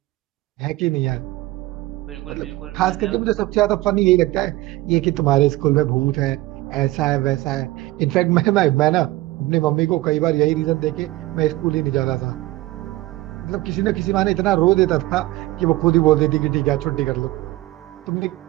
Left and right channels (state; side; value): quieter; left; 18.3 dB